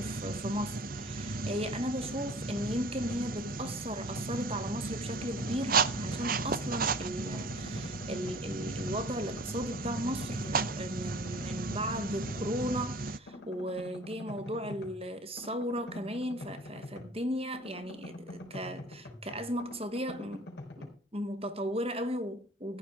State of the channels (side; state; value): both; normal; correlation 0.45